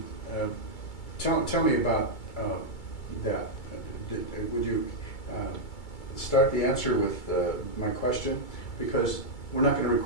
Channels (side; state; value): right; late; 2.3 ms